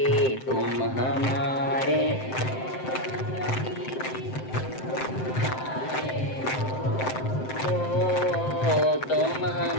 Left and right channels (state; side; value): late; right; 7.7 ms